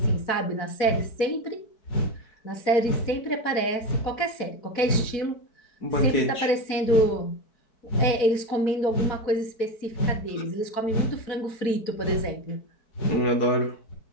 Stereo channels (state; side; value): late; right; 4.6 ms